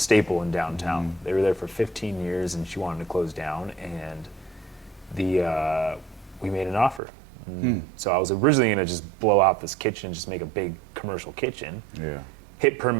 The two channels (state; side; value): drops out; left; at 7.0 s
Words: in downtown. They were there for 15 years, and she wanted to close down, and we made an offer. So I was originally going to just blow out this kitchen, just make a big commercial kitchen, hit